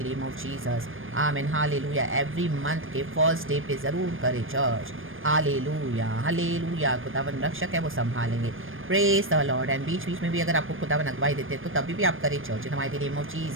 name of Jesus. आमीन। हालेलुया। एवरी मंथ के फर्स्ट डे पे ज़रूर करें चर्च। Hallelujah hallelujah. खुदावन रक्षक है, वो संभालेंगे। Praise the lord. एंड बीच बीच में भी अगर आपको खुदावन अगवाई देते हैं तो तभी भी आप करें church in the mighty name of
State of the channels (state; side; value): late; left; 0.59 ms